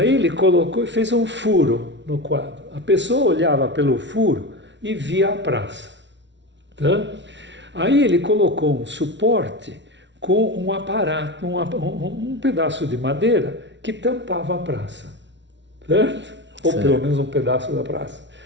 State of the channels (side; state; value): left; late; 0.52 ms